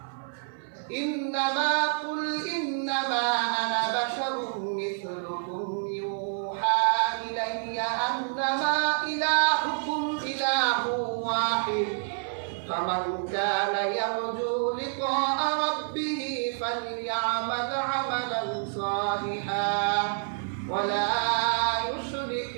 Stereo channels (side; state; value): left; silent; 55 dB below the other